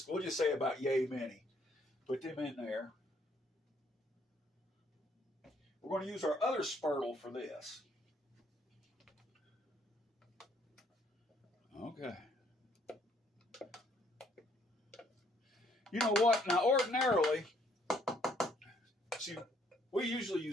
say about yay many. Put them in there. We're going to use our other spurtle for this. Okay. You know what? Now, ordinarily, see, we usually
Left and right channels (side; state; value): both; normal; correlation 0.66